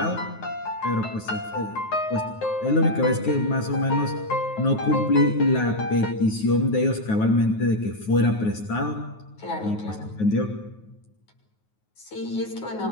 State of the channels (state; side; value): late; right; 9.4 ms